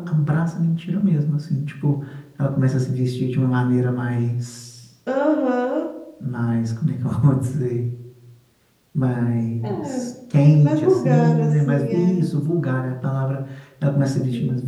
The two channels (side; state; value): both; identical; correlation 1.00